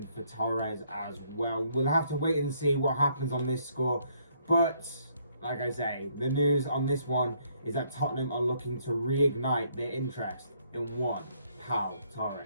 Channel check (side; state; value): both; inverted; correlation -0.68